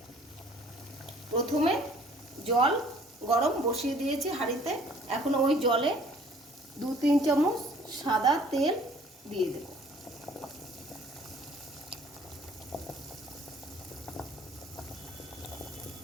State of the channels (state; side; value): normal; both; correlation 0.55